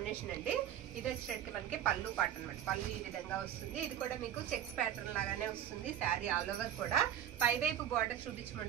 అండి. ఇది వచ్చేటట్టుకి మనకి పళ్ళు పాట అనమాట. పళ్ళు ఈ విధంగా వస్తుంది. ఇది కూడా మీకు చెక్స్ ప్యాటర్న్ లాగానే వస్తుంది. శారీ ఆల్ ఓవర్ కూడా పైవైపు బార్డర్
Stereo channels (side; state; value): left; quieter; 10.3 dB